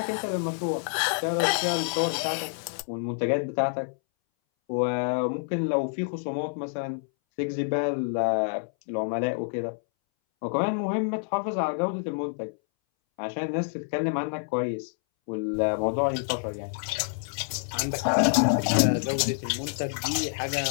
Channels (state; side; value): silent; right; 60 dB below the other